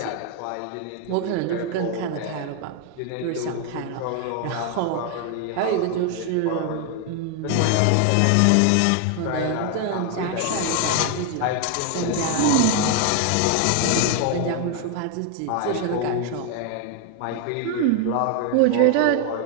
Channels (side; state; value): both; different; correlation 0.01